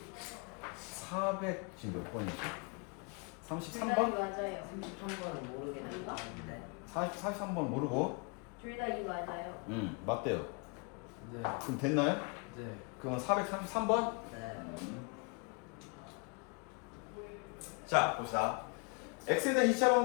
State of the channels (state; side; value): quieter; right; 34.0 dB